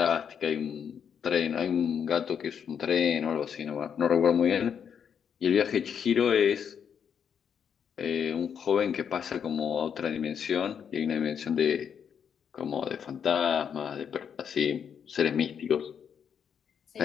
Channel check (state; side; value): quieter; right; 7.7 dB